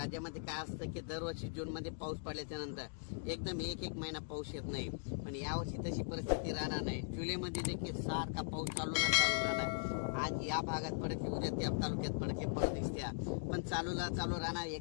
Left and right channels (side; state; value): right; silent; digital silence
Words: काय असतं की दरवर्षी जूनमध्ये पाऊस पडल्याच्या नंतर एकदम एक महिना पाऊस येत नाही. पण यावर्षी तशी परिस्थिती राहणार नाही. जुलैमध्ये देखील सारखा पाऊस चालू राहणार. आज या भागात पडते, उद्या त्या तालुक्यात पडते, परत दिसत्या, पण चालू राहणार.